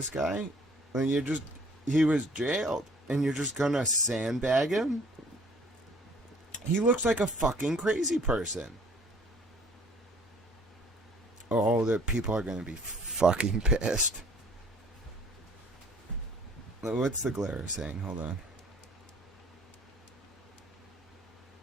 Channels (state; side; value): normal; both; correlation 0.56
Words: guy? He was jailed. and you're just gonna sandbag him? He looks like a fucking crazy person. Oh, the people are gonna be fucking pissed. What's the glare saying? Hold on.